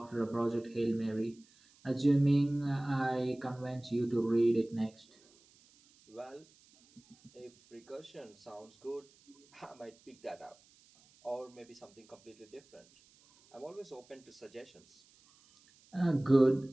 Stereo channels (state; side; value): noise; right; hiss, 29 dB below the sound